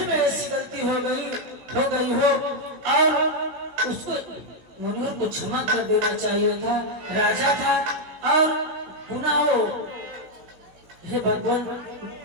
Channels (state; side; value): late; left; 16 ms